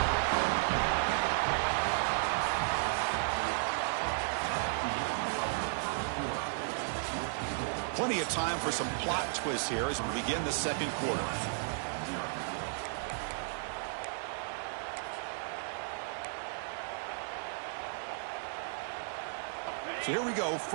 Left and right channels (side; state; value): left; silent; digital silence